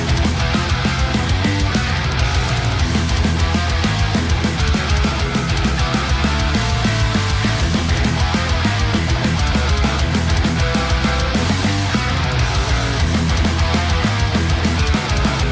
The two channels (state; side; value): identical; both; correlation 1.00